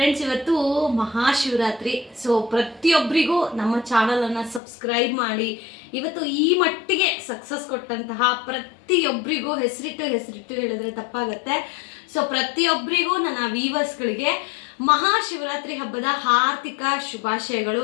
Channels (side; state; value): right; drops out; at 4.6 s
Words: ಇವತ್ತು ಮಹಾಶಿವರಾತ್ರಿ. ಸೊ ಪ್ರತಿಯೊಬ್ಬರಿಗೂ ನಮ್ಮ ಚಾನಲನ್ನು ಸಬ್ಸ್ಕ್ರೈಬ್ ಮಾಡಿ ಇವತ್ತು ಈ ಮಟ್ಟಿಗೆ ಸಕ್ಸಸ್ ಕೊಟ್ಟಂತಹ ಪ್ರತಿಯೊಬ್ಬರಿಗೂ ಹೆಸರಿಟ್ಟು ಹೇಳಿದ್ರೆ ತಪ್ಪಾಗತ್ತೆ. ಸೊ ಪ್ರತಿಯೊಬ್ಬರಿಗೂ ನನ್ನ ವೀವರ್ಸ್ಗಳಿಗೆ ಮಹಾಶಿವರಾತ್ರಿ ಹಬ್ಬದ ಹಾರ್ದಿಕ ಶುಭಾಶಯಗಳು.